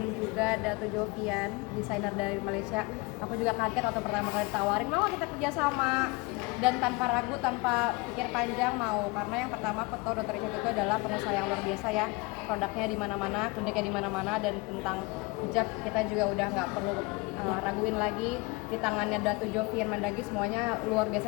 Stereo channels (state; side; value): quieter; right; 25.5 dB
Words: juga Dato Jovian, desainer dari Malaysia. Aku juga kaget waktu pertama kali ditawarin, mau kita kerja sama, dan tanpa ragu, tanpa pikir panjang mau, karena yang pertama aku tahu Dr. Richard itu adalah pengusaha yang luar biasa ya, produknya di mana-mana, kliniknya di mana-mana, dan tentang hijab kita juga udah nggak perlu raguin lagi. Di tangannya Dato Jovian Mandagi semuanya luar biasa,